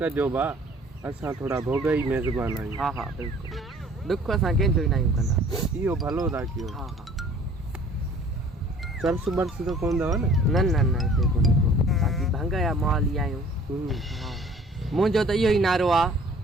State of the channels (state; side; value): normal; both; correlation 0.52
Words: भा, असां थोरा भोगई मेज़बान आहियूं। हा हा, बिल्कुलु, ॾुख असां कंहिंजो ई न आहियूं कंदा। इहो भलो था कयो। हा हा, चर्स बर्स त कोन अथव न? न न न, हिते कोन्हे को, बाक़ी भंग जा माल ई आहियूं। हा, मुंहिंजो त इहो ई नारो आहे,